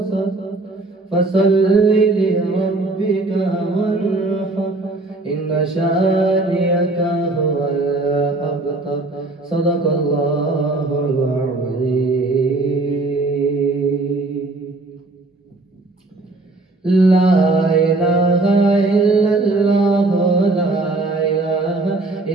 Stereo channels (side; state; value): left; quieter; 3.1 dB